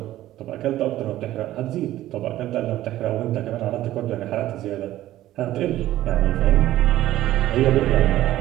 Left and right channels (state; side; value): quieter; left; 14.4 dB